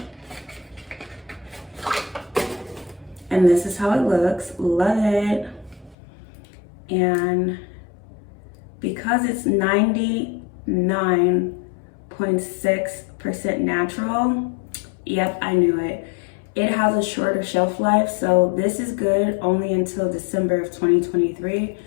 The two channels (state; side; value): drops out; right; at 6.0 s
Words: And this is how it looks. Love it. And because it's 99.6% natural, yep, I knew it. It has a shorter shelf life, so this is good only until December of 2023.